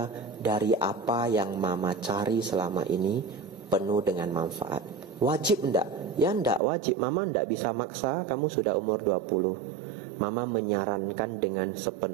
Dari apa yang Mama cari selama ini penuh dengan manfaat. Wajib enggak? Ya enggak wajib. Mama enggak bisa maksa, kamu sudah umur 20. Mama menyarankan dengan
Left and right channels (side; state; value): left; drops out; at 6.6 s